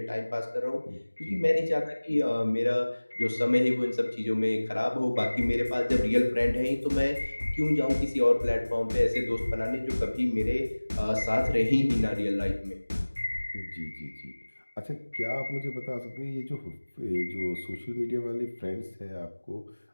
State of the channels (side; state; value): both; inverted; correlation -1.00